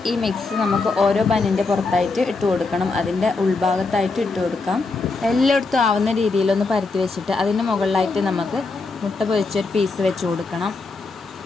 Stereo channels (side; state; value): right; quieter; 3.8 dB